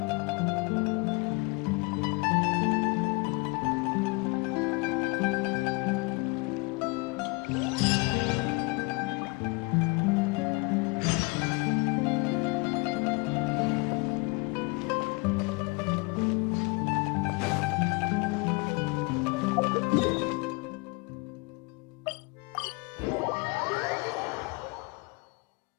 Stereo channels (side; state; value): right; quieter; 28.5 dB